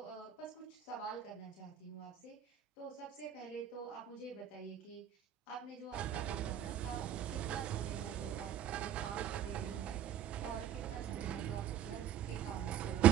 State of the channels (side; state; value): left; quieter; 10.2 dB